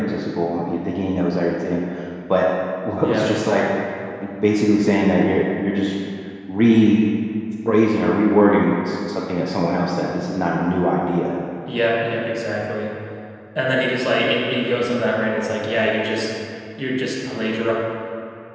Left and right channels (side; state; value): both; identical; correlation 1.00